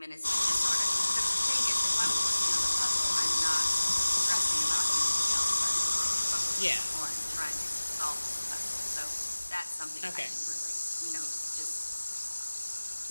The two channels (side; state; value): both; inverted; correlation -1.00